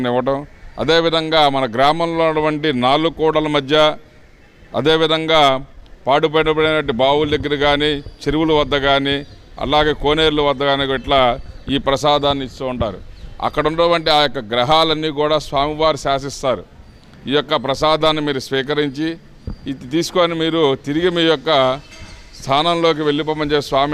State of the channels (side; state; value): both; identical; correlation 1.00